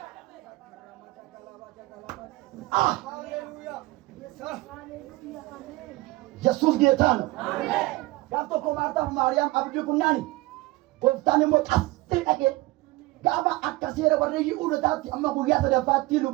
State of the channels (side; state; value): left; quieter; 20.4 dB